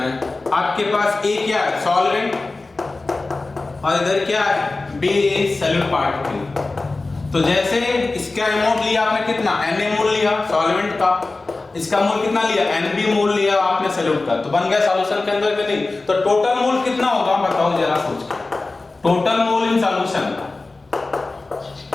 हैं, आपके पास ए क्या है, सॉल्वेंट, और इधर क्या है, बी इज सॉल्यूट पार्टिकल। तो जैसे इसका अमाउंट लिया आपने कितना, Na मोल लिया सॉल्वेंट का, इसका मोल कितना लिया, Nb मोल लिया आपने सॉल्यूट का, तो बन गया सॉल्यूशन के अंदर कि नहीं? तो टोटल मोल कितना होगा बताओ जरा सोच के। Total mole in solution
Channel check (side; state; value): right; quieter; 3.4 dB